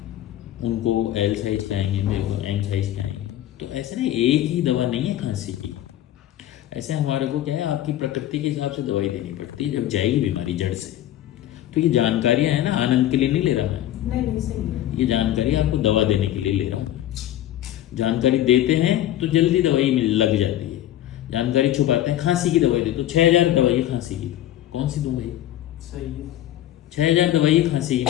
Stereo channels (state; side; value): quieter; right; 12.9 dB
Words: उनको एल साइज के आएंगे, मेरे को एम साइज के आएंगे। तो ऐसे ना एक ही दवा नहीं है खांसी की। ऐसे हमारे को क्या है, आपकी प्रकृति के हिसाब से दवाई देनी पड़ती है जब जाएगी बीमारी जड़ से। तो ये जानकारियां है ना, आनंद के लिए नहीं ले रहा मैं, नहीं नहीं सही है। ये जानकारी आपको दवा देने के लिए ले रहा हूँ। जानकारी देते हैं तो जल्दी दवाई लग जाती है, जानकारी छुपाते हैं। खांसी की दवाई दे तो 6000 दवाई है खांसी की, कौन सी दूं भाई? सही है। 6000 दवाई है खांसी